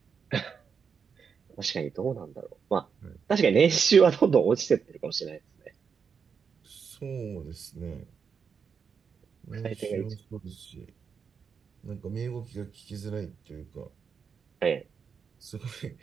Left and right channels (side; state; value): left; quieter; 6.3 dB